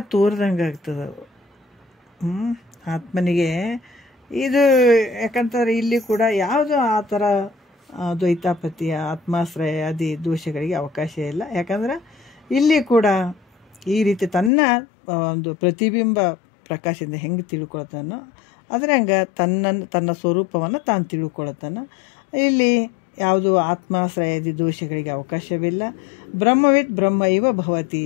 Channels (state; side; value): drops out; right; at 14.5 s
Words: ತೋರ್ದಂಗೆ ಆಗ್ತದೆ ಆತ್ಮನಿಗೆ. ಇದು ಯಾಕಂತಾರೆ ಇಲ್ಲಿ ಕೂಡ ಯಾವುದು ಆ ಥರ ದ್ವೈತಾಪತಿಯ ಆತ್ಮಾಶ್ರಯ ಆದಿ ದೋಷಗಳಿಗೆ ಅವಕಾಶ ಇಲ್ಲ. ಯಾಕಂದ್ರೆ ಇಲ್ಲಿ ಕೂಡ ಈ ರೀತಿ ತನ್ನ ಒಂದು ಪ್ರತಿಬಿಂಬ ಪ್ರಕಾಶದಿಂದ ಹೆಂಗೆ ತಿಳ್ಕೊಳ್ತಾನೋ ಅದ್ರಂಗೆ ತನ್ನ ಸ್ವರೂಪವನ್ನು ತಾನು ತಿಳ್ಕೊಳ್ತಾನೆ. ಇಲ್ಲಿ ಯಾವುದು ಆತ್ಮಾಶ್ರಯದಿ ದೋಷಗಳಿಗೆ ಅವಕಾಶವಿಲ್ಲ. ಬ್ರಹ್ಮವಿತ್ ಬ್ರಹ್ಮ ಇವ ಭವತಿ